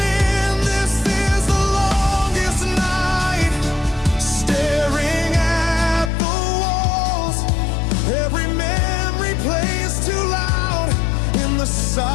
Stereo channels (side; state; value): right; drops out; at 6.1 s